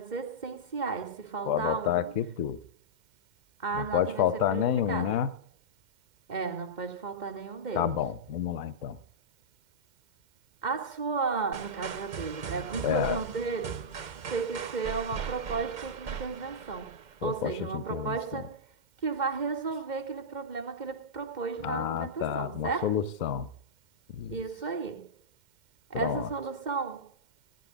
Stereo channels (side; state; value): left; late; 2.1 ms